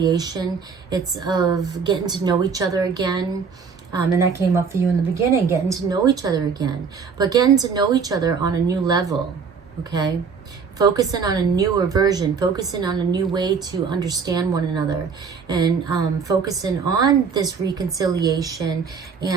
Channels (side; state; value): left; quieter; 5.8 dB